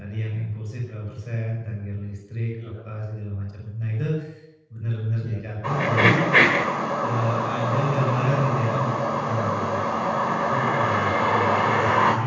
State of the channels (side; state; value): both; identical; correlation 1.00